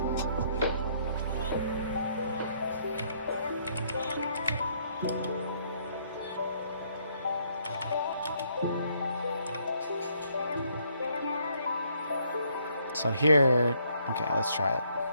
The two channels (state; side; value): inverted; both; correlation -0.68